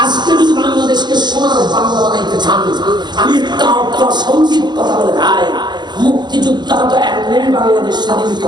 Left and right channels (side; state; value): left; late; 0.21 ms